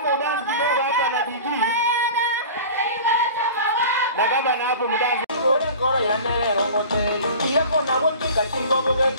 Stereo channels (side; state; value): both; inverted; correlation -0.39